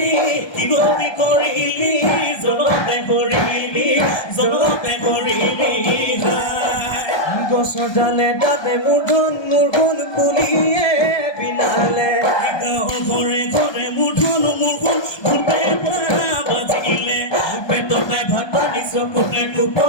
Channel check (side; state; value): right; late; 1.2 ms